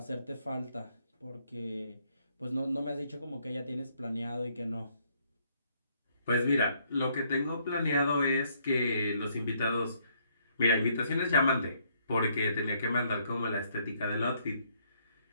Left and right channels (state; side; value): inverted; both; correlation -0.69